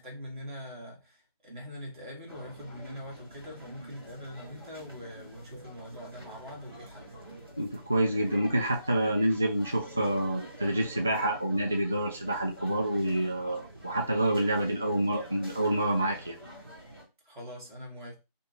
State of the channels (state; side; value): inverted; both; correlation -0.82